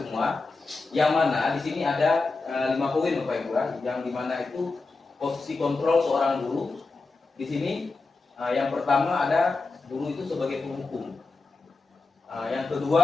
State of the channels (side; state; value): right; quieter; 3.8 dB